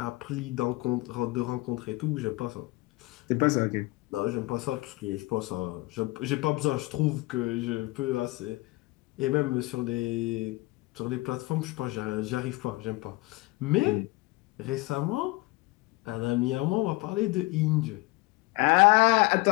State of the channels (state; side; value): quieter; right; 22.2 dB